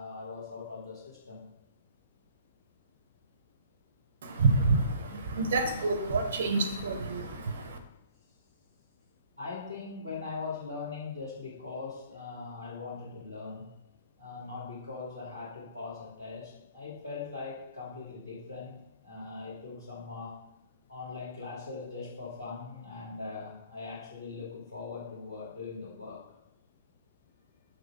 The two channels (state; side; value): inverted; both; correlation -0.57